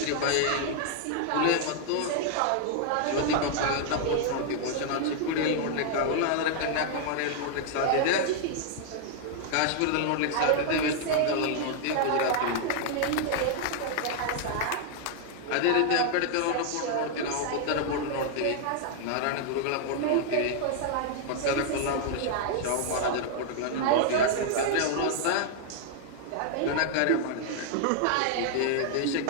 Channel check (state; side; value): different; both; correlation 0.00